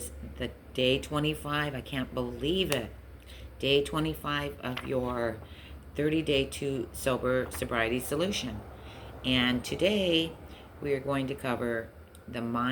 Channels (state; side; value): identical; both; correlation 1.00